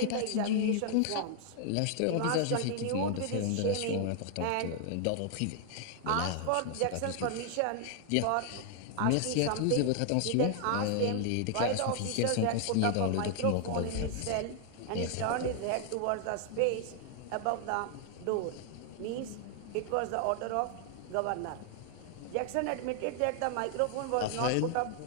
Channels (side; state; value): both; different; correlation 0.00